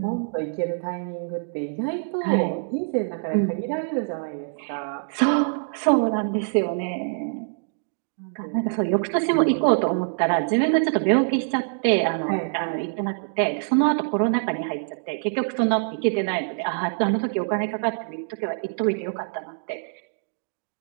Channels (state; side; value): silent; left; digital silence